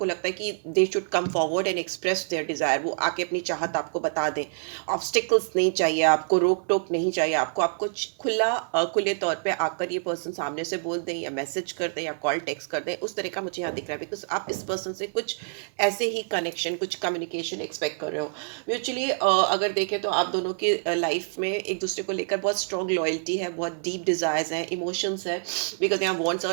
लगता है कि they should come forward and express their Dzire, वो आके अपनी चाहत आपको बता दें। ऑब्स्टिकल्स नहीं चाहिए आपको, रोक टोक नहीं चाहिए आपको, आपको खुले तौर पे आकर ये पर्सन सामने से बोल दें या मैसेज कर दें या कॉल टेक्स्ट कर दें, उस तरह का मुझे यहाँ दिख रहा है। बिकॉज आप इस पर्सन से कुछ ऐसे ही कनेक्शन, कुछ कम्युनिकेशन एक्सपेक्ट कर रहे हो म्यूचुअली। अगर देखें तो आप दोनों की लाइफ में एक दूसरे को लेकर बहुत स्ट्रॉन्ग लॉयल्टी है, बहुत डीप डिजायर्स हैं, इमोशंस है। बिकॉज यहाँ वॉन्ट्स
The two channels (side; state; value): left; silent; 60 dB below the other